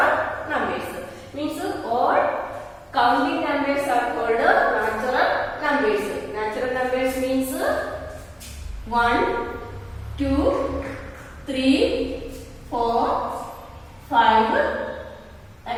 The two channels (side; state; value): both; identical; correlation 1.00